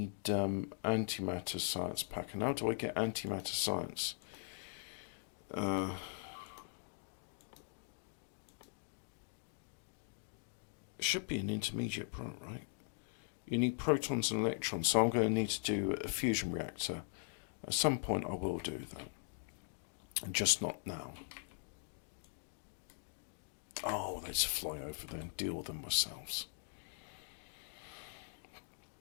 antimatter science pack. And how do I get antimatter science? It should be an intermediate product, right? You need protons and electrons, so I'm going to need to do a fusion reactor. At some point I will do that. And just not now. Oh, let's fly over there and deal with them ourselves.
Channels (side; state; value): right; silent; digital silence